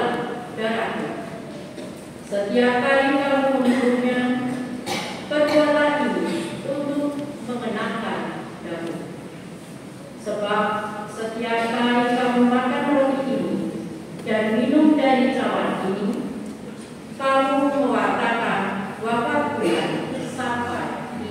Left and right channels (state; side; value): identical; both; correlation 1.00